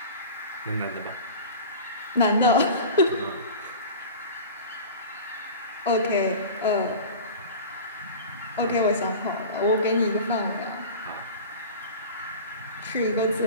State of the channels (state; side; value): inverted; both; correlation -0.35